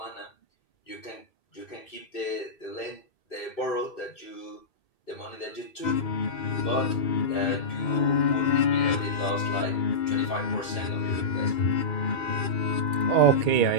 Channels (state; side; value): late; right; 2.6 ms